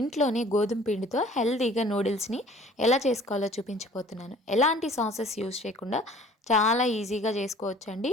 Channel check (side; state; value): both; normal; correlation 0.51